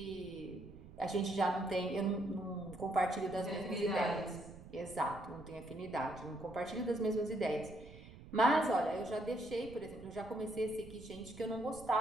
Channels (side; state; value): right; noise; rumble, 17 dB below the sound